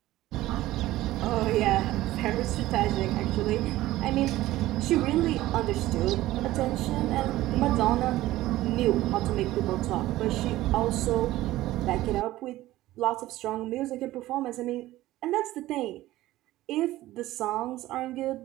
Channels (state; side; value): quieter; left; 16.1 dB